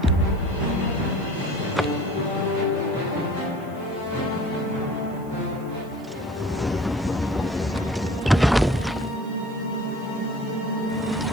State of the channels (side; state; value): right; noise; hiss, 27 dB below the sound